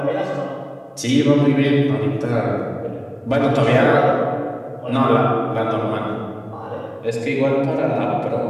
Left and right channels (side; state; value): both; identical; correlation 1.00